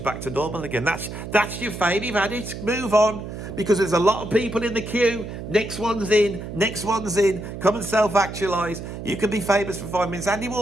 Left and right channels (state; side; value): noise; right; hum, 9 dB below the sound